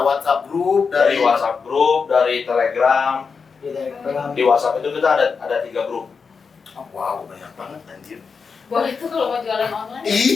WhatsApp grup, Dari WhatsApp grup, dari Telegram. Di WhatsApp itu kita ada 3 grup. Oh, wow, banyak banget anjir. Boleh tuh kalau mau jualan online.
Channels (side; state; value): right; quieter; 5.4 dB